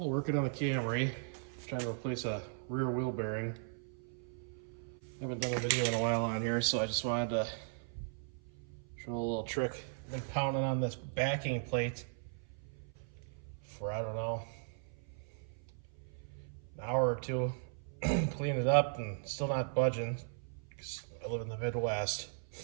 working on the Camry, trying to replace a rear wheel bearing. Haven't done a video in a while on here, so I just wanted to show a little trick. I've been pounding on this backing plate for, I don't know, an hour or two. Clean it up and still not budging because I live in the Midwest.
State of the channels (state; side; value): silent; left; 53 dB below the other